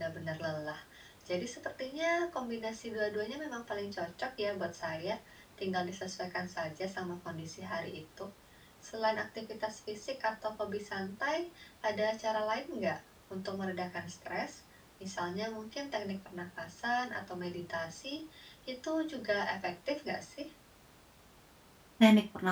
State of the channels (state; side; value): identical; both; correlation 1.00